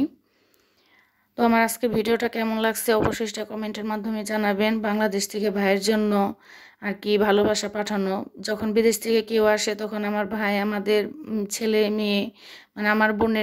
তো আমার আজকের ভিডিওটা কেমন লাগছে অবশ্যই সেটা কমেন্টের মাধ্যমে জানাবেন। বাংলাদেশ থেকে ভাইয়ের জন্য আর কি ভালোবাসা পাঠানো। যখন বিদেশ থেকে কেউ আসে তখন আমার ভাই আমাদের ছেলে মেয়ে, মানে আমার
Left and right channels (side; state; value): both; identical; correlation 1.00